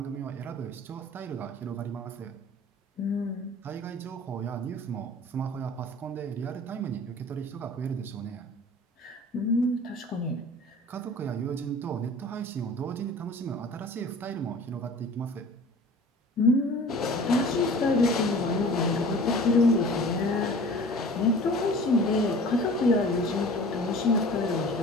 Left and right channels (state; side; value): normal; both; correlation 0.44